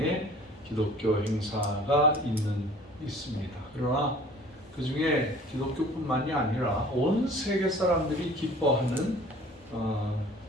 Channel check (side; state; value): both; normal; correlation 0.49